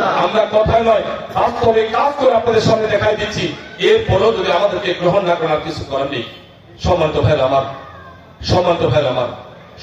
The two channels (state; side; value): identical; both; correlation 1.00